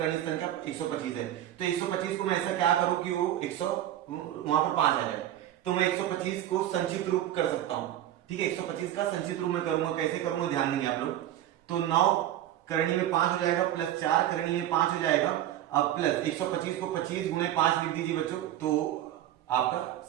संख्या 125 है। तो 125 को मैं ऐसा क्या करूं कि वो 100 वहां पर 5 आ जाए। तो मैं 125 को संचित रूप कर सकता हूं। ठीक है, 125 का संचित रूप में करूंगा, कैसे करूंगा ध्यान देंगे आप लोग। तो 9 करनी में 5 हो जाएगा प्लस 4 करनी में 5 हो जाएगा। अब प्लस 125 को 25 गुणे 5 लिख दीजिए बच्चों, तो आपका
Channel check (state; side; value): quieter; left; 12.5 dB